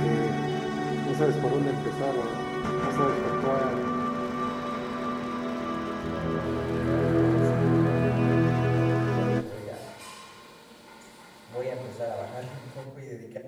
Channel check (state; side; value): identical; both; correlation 1.00